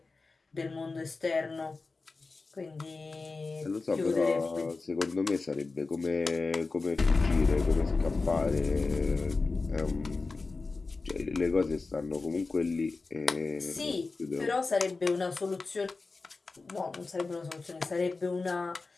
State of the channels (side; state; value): right; quieter; 3.9 dB